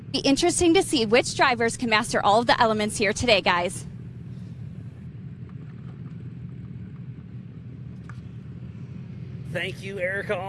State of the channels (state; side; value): identical; both; correlation 1.00